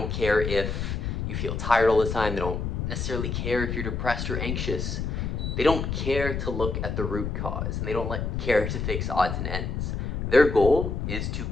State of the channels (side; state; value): left; noise; rumble, 2 dB below the sound